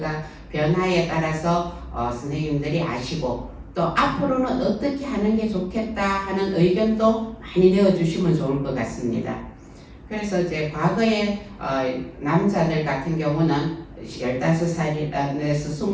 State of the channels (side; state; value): both; identical; correlation 1.00